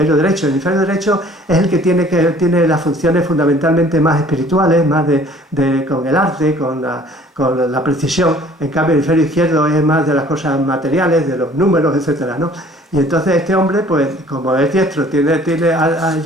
derecho. El hemisferio derecho es el que tiene las funciones fundamentalmente más espirituales, más con el arte, con la precisión. En cambio, el hemisferio izquierdo es más de las cosas materiales, de los números, etcétera, ¿no? Y entonces este hombre, pues como es diestro,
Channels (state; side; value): normal; both; correlation 0.53